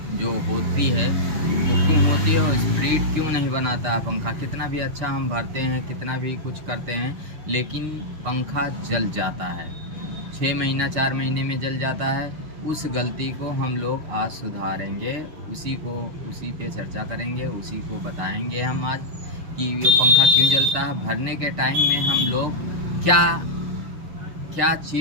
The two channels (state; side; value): late; left; 6.5 ms